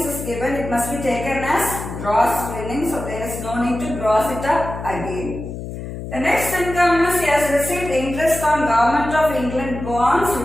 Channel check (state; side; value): noise; left; hum, 8 dB below the sound